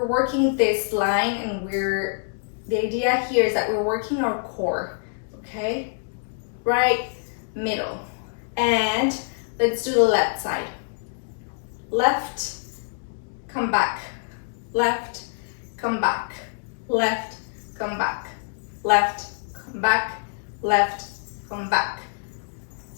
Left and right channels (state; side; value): silent; right; digital silence